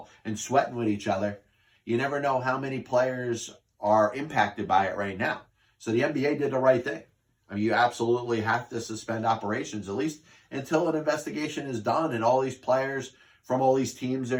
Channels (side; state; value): both; identical; correlation 1.00